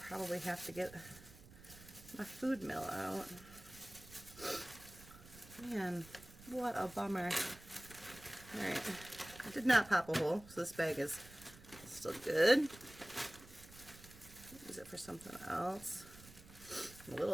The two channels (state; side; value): noise; right; rumble, 19 dB below the sound